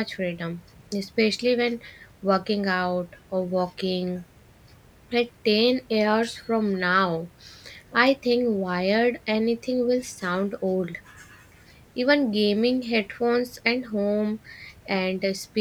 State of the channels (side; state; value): both; identical; correlation 1.00